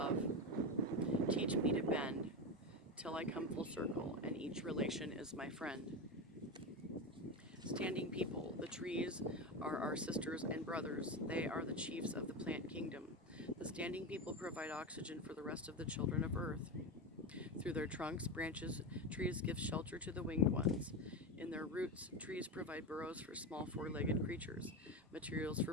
teach me to bend, till I come full circle, and each relation is my friend. Standing people, the trees are our sisters and brothers. They are the chiefs of the plant kingdom. The standing people provide oxygen for the rest of the children of earth. Through their trunks, branches, trees give shelter to the winged ones. In their roots, trees provide burrows for small four-legged creatures, materials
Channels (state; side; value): normal; both; correlation 0.18